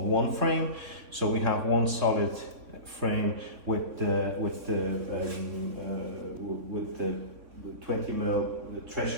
one frame, so we have one solid frame with the 20 mil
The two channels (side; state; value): left; late; 3.7 ms